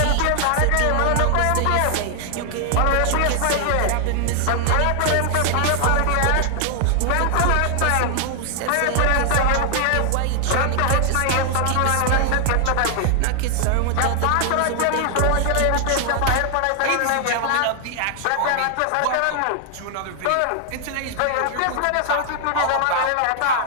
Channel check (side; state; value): both; different; correlation 0.00